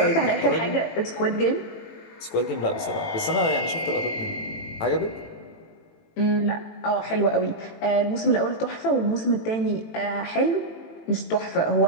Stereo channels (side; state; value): right; late; 18 ms